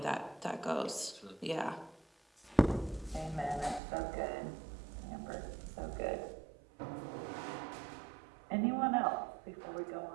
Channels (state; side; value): drops out; left; at 3.8 s